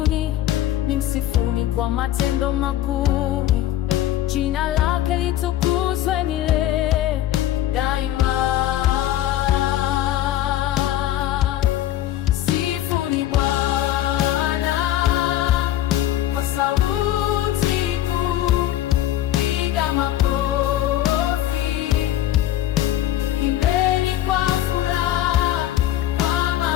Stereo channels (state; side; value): quieter; right; 13.1 dB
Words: msifuni kwa matendo makuu. Jina lake litukuzwe milele daima. Sifuni Bwana kwa sauti kuu, piga makofi, imbeni kwa furaha, kwa